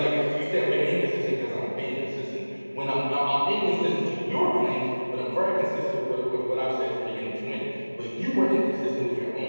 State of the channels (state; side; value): inverted; both; correlation -1.00